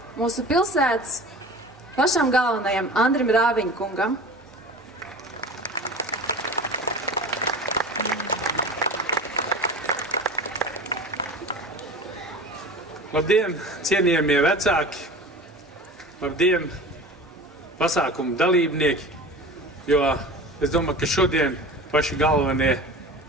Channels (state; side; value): normal; both; correlation 0.36